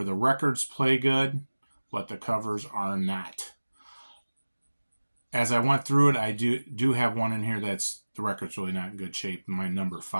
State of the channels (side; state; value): both; inverted; correlation -1.00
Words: the records play good, but the covers are not. As I went through it, I do have one in here that's the record's really not in good shape, my number